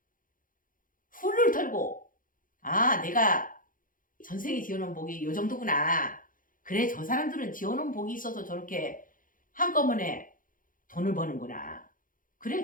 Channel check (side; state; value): right; late; 0.40 ms